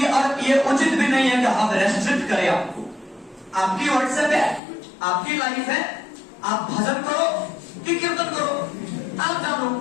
और ये उचित भी नहीं है कि हम रेस्ट्रिक्ट करें आपको। आपकी व्हाट्सएप है, आपकी लाइफ है, आप भजन करो कि कीर्तन करो, आप जानो,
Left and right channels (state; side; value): drops out; right; at 4.6 s